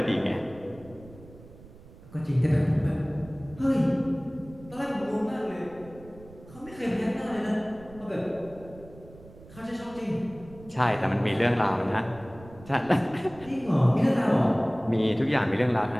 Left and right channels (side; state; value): right; noise; rumble, 20 dB below the sound